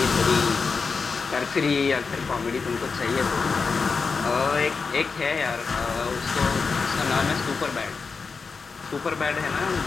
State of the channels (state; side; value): quieter; right; 4.9 dB